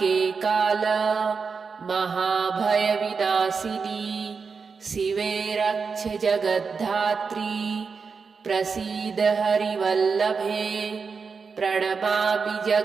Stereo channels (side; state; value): left; quieter; 5.2 dB